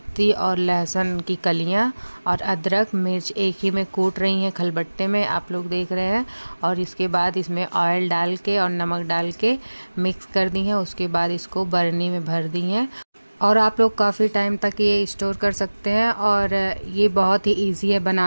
और लहसुन की कलियाँ और अदरक मिर्च एक ही में कूट रही हैं खलबट्टे में, आप लोग देख रहे हैं। और इसके बाद इसमें ऑयल डाल के और नमक डाल के मिक्स कर दी हैं। उसके बाद इसको बरनी में भर दी हैं और आप लोग काफ़ी टाइम तक ये स्टोर कर सकते हैं। और ये बहुत ही इजी है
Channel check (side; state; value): both; inverted; correlation -1.00